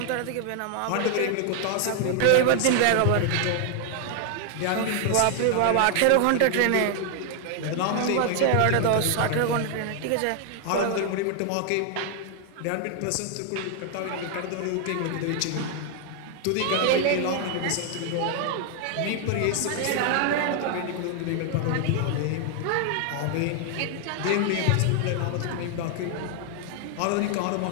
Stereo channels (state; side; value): different; both; correlation 0.00